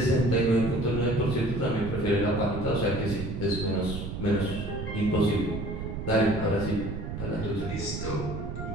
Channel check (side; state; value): right; noise; rumble, 6 dB below the sound